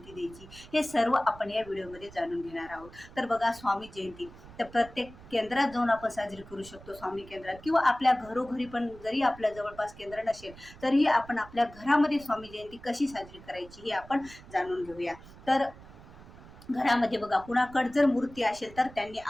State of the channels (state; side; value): noise; right; rumble, 19 dB below the sound